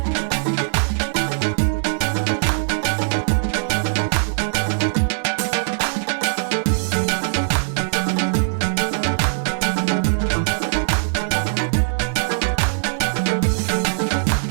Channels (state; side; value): silent; left; 65 dB below the other